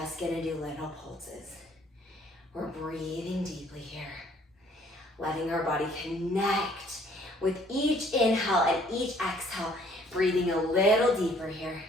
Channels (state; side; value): normal; both; correlation 0.60